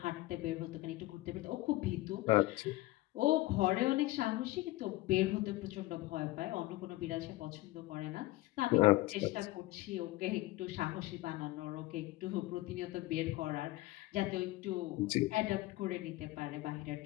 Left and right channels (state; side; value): quieter; right; 18.6 dB